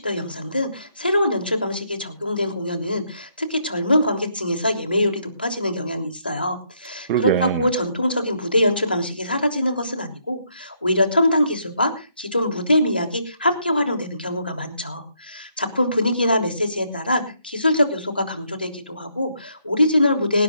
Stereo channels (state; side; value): inverted; both; correlation -0.73